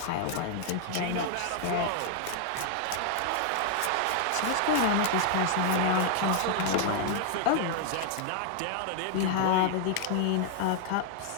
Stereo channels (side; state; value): both; different; correlation 0.00